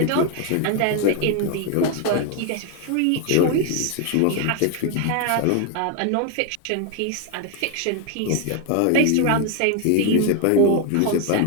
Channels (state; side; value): different; both; correlation 0.01